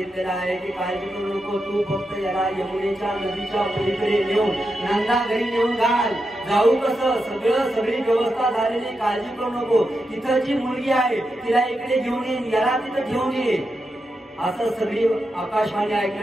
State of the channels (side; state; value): both; normal; correlation 0.87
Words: आहे की काळजी करू नको, तू फक्त याला यमुनेच्या नदीच्या पलीकडे नेऊन नंदा घरी नेऊन घाल. जाऊ कसं? सगळी व्यवस्था झालेली, काळजी करू नको. तिथं जी मुलगी आहे तिला इकडे घेऊन ये, याला तिथं घेऊन ये. असं सगळी आकाशवाणी